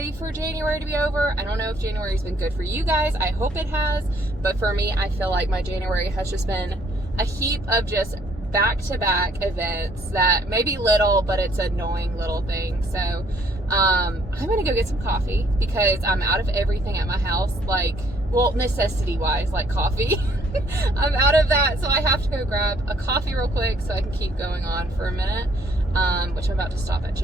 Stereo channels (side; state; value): both; normal; correlation 0.64